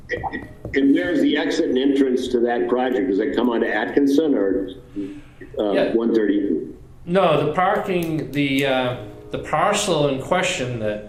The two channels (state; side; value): identical; both; correlation 1.00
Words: And where's the exit and entrance to that project? Does it come onto Atkinson or Yeah. 130? No, the parking, the parcel in question